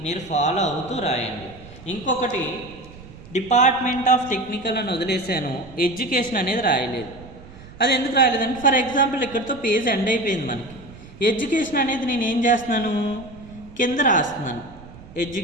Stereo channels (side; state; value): right; noise; rumble, 18 dB below the sound